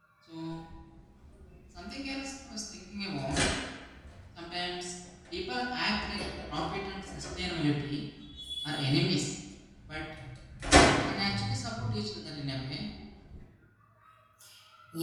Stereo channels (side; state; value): both; identical; correlation 1.00